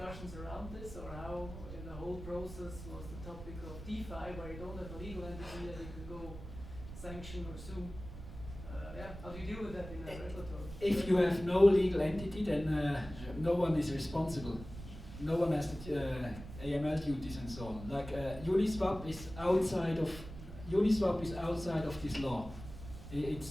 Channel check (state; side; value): noise; right; rumble, 12 dB below the sound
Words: around this, or how in the whole process was the topic of DeFi, where you don't have a legal entity that you can go sanction or sue? yeah, how do you deal with that in a regulatory? If you have no legal entity, then no one is responsible. No one has the AML duties and so on. Like Uniswap is outside of this law.